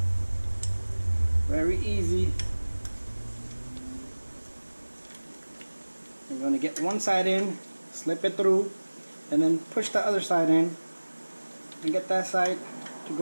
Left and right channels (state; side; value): inverted; both; correlation -1.00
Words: Very easy. I'm gonna get one side in, slip it through, and then push the other side in. and get that side to